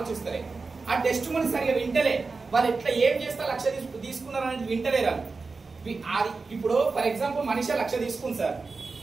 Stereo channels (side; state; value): left; quieter; 4.2 dB